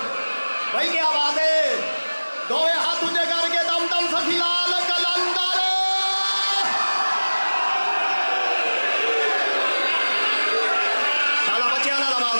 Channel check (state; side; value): inverted; both; correlation -1.00